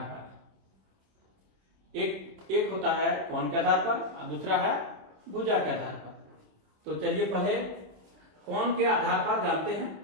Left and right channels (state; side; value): late; left; 27 ms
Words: पर। एक होता है कोण के आधार पर और दूसरा है भुजा के आधार पर। तो चलिए पहले कोण के आधार पर जानते हैं।